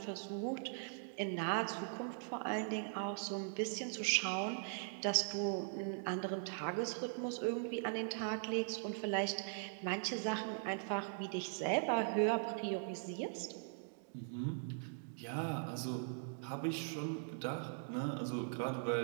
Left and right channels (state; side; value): silent; left; digital silence